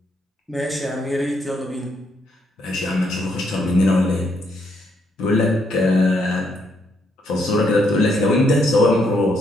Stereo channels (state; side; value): normal; both; correlation 0.74